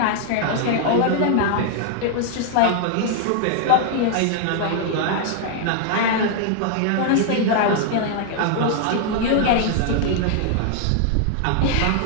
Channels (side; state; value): both; different; correlation 0.00